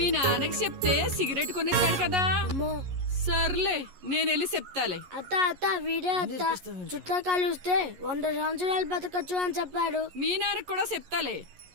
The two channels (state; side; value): late; left; 11 ms